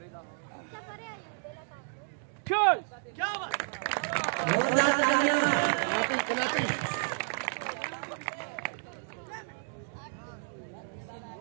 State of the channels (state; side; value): silent; left; digital silence